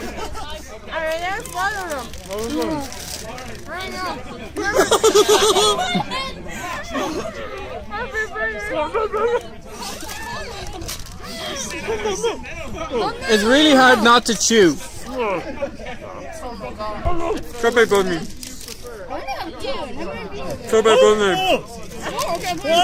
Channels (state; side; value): identical; both; correlation 1.00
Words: I already swallowed them. I know. It's really hard not to chew. Strawberry bunny. Strawberry bunny.